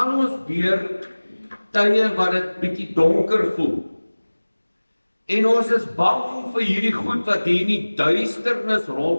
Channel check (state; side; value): inverted; both; correlation -1.00